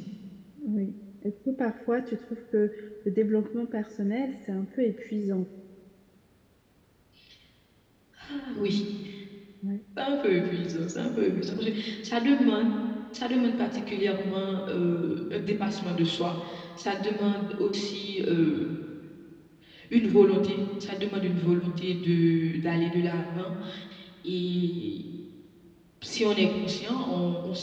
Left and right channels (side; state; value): both; identical; correlation 1.00